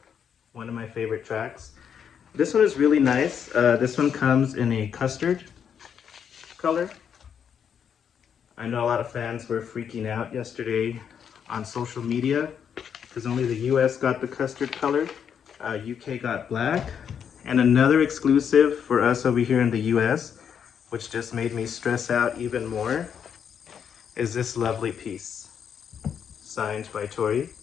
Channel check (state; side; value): quieter; right; 7.8 dB